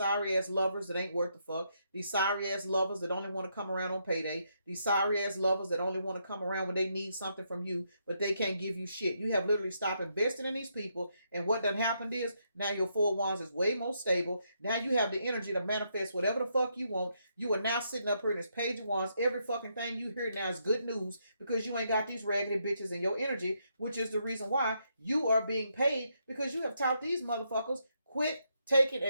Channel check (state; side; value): inverted; both; correlation -0.77